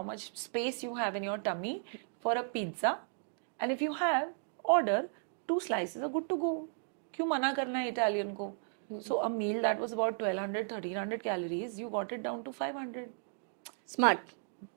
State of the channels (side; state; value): left; silent; digital silence